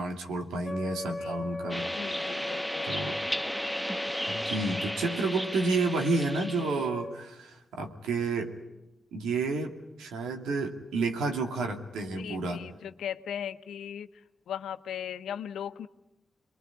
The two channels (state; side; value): normal; both; correlation 0.74